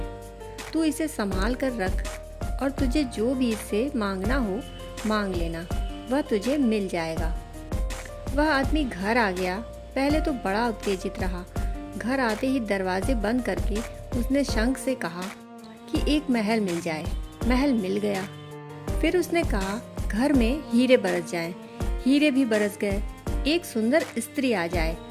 तू इसे संभाल कर रख और तुझे जो भी इससे मांगना हो मांग लेना, वह तुझे मिल जाएगा। वह आदमी घर आ गया। पहले तो बड़ा उत्तेजित रहा। घर आते ही दरवाजे बंद करके उसने शंख से कहा कि एक महल मिल जाए। महल मिल गया। फिर उसने कहा घर में हीरे बरस जाएं। हीरे भी बरस गए। एक सुंदर स्त्री आ जाए।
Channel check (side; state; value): both; identical; correlation 1.00